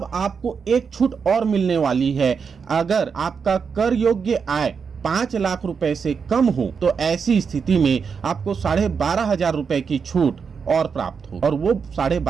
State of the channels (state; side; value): quieter; left; 6.0 dB